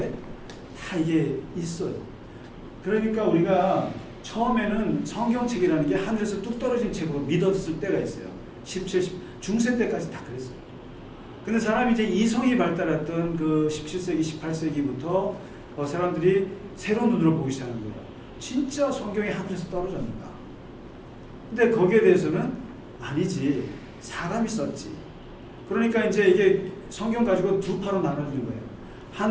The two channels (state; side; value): identical; both; correlation 1.00